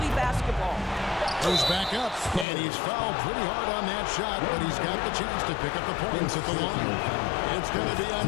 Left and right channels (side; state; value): right; drops out; at 2.5 s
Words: basketball. Goes back up, and he's fouled pretty hard on that shot, but he's got the chance to pick up the points at the line. It's going to be